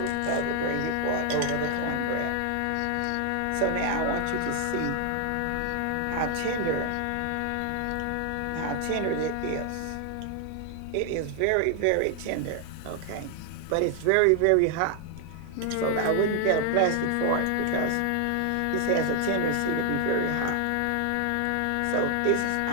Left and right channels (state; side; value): different; both; correlation 0.00